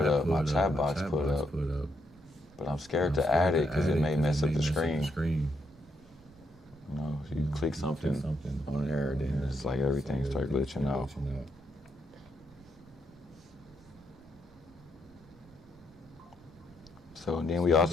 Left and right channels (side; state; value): right; noise; rumble, 26 dB below the sound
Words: up, my chat box put up, but I'm scared to add it because it may mess up the screen. You know, if you click something on there, then it's like everything starts glitching out. So and then we